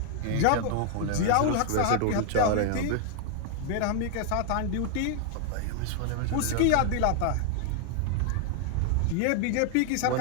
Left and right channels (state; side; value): different; both; correlation 0.00